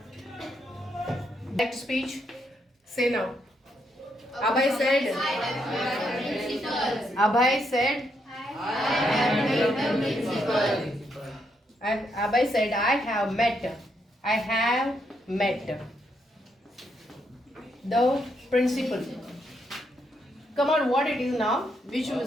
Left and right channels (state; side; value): normal; both; correlation 0.78